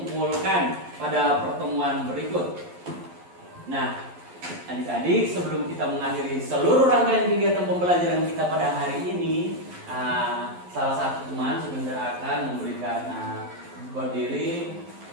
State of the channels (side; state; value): left; late; 11 ms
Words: pada pertemuan berikut. Nah, adik-adik, sebelum kita mengakhiri seluruh rangkaian kegiatan pembelajaran kita pada hari ini, salah satu teman sebentar akan memberikan berdiri